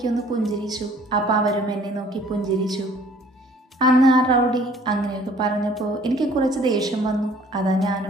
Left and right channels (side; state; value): both; normal; correlation 0.55